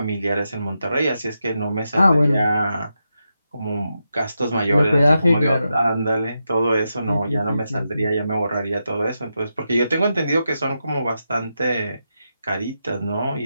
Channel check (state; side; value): inverted; both; correlation -0.87